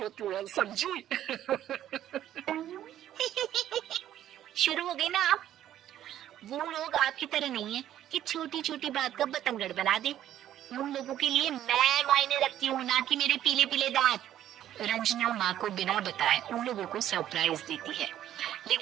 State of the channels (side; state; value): left; quieter; 11.8 dB